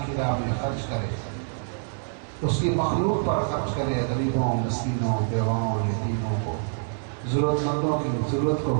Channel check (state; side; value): silent; left; 61 dB below the other